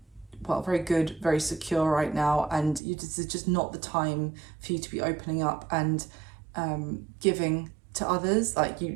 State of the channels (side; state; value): left; drops out; at 2.8 s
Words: good, very secure right now, and this is just not the time for you to be opening up and giving to others. Like